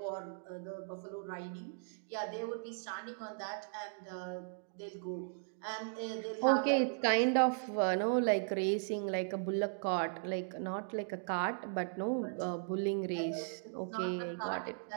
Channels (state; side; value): silent; left; digital silence